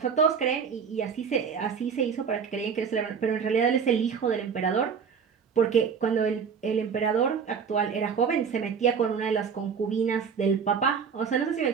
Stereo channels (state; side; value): quieter; left; 6.5 dB